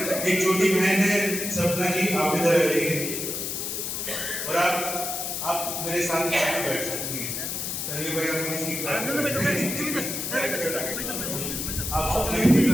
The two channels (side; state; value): left; noise; hiss, 3 dB below the sound